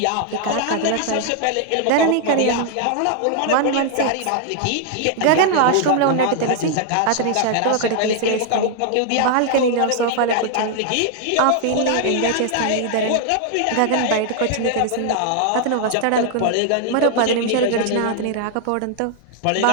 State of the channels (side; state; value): both; different; correlation 0.00